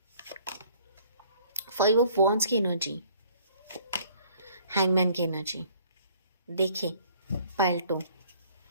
5 ऑफ वॉन्ड्स की एनर्जी, हैंगमैन की एनर्जी। देखिए पाइल 2,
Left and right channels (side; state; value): both; inverted; correlation -0.58